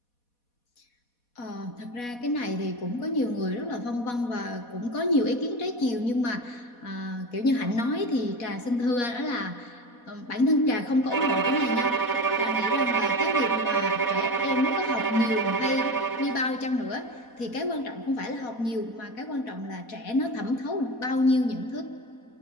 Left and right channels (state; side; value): late; right; 4.1 ms